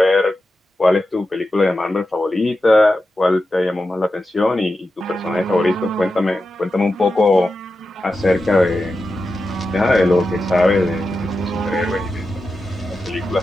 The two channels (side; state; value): both; normal; correlation 0.91